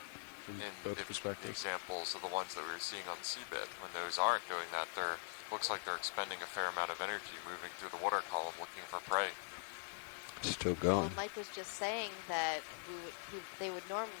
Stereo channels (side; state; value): right; silent; digital silence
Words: there, in both the perspectives. examples of the ones that we were seeing on the seabed. When those aren't doing that, they're looks like they're expending a fair amount of energy moving through the water column looking for prey. Still Well, going. Mike was just saying that they would